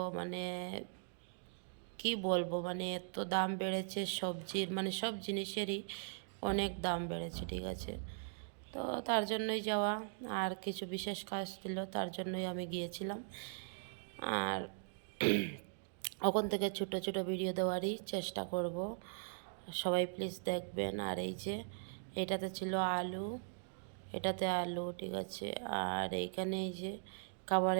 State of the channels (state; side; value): silent; left; digital silence